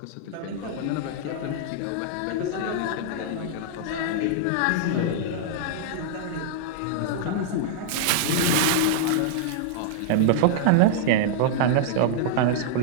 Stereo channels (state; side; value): different; both; correlation -0.01